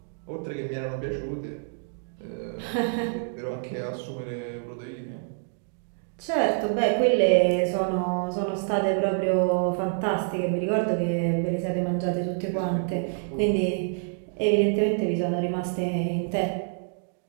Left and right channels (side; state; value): left; silent; digital silence